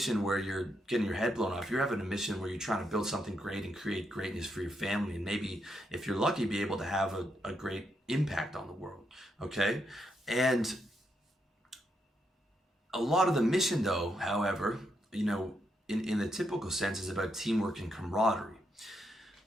where you're getting your head blown off, you're having a mission where you're trying to build something great and create greatness for your family, and maybe, if you're lucky, be able to have a great impact on the world. Okay? And a lot of the mission, though, however, in the typical sense, is about teamwork and camaraderie.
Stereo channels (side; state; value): both; normal; correlation 0.80